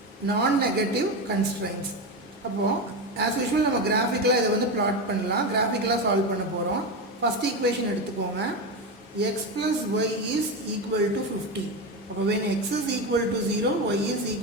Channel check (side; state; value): both; normal; correlation 0.17